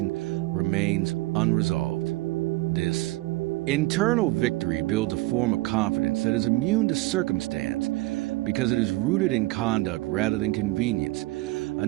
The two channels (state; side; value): quieter; left; 20.5 dB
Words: remains unresolved. This Internal victory builds a form of confidence that is immune to circumstance because it is rooted in conduct rather than convenience.